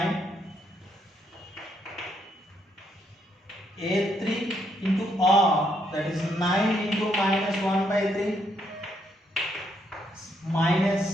A3 into R, that is 9 into minus 1 by 3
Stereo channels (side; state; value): both; normal; correlation 0.74